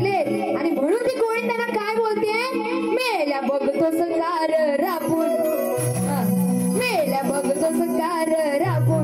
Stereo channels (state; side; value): identical; both; correlation 1.00